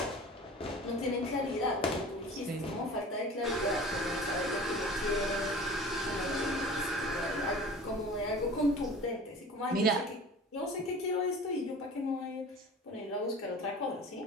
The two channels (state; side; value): normal; both; correlation 0.40